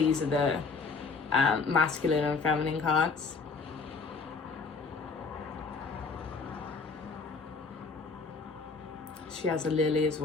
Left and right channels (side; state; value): right; quieter; 4.6 dB